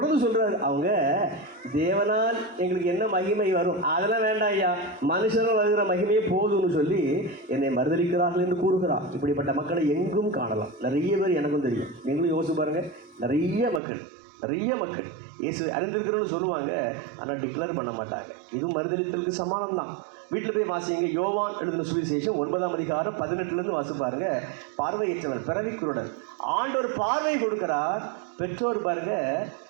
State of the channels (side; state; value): left; drops out; at 13.8 s